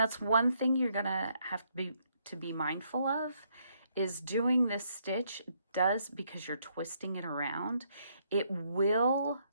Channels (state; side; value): inverted; both; correlation -0.72